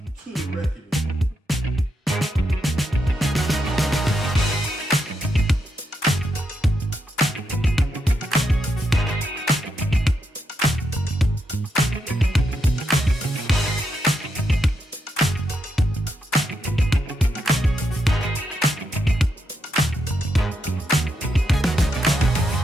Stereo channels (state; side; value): normal; both; correlation 0.81